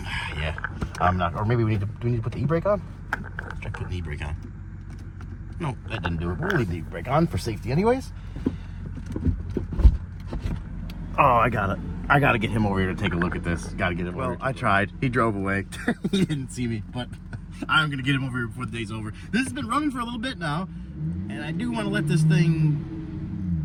Yeah, I'm not, or maybe do we need to put the e-brake on? Let's try putting the e-brake on. No, that didn't do it. We'll leave the e-brake on for safety anyways. Oh, I gotta get him over here to take a look at this. Gotta get him over here. I tried. He drove away. He didn't see me, but I'm gonna get him over here before the day's over. This has been running for a little bit now, and I do want to let this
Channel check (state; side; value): identical; both; correlation 1.00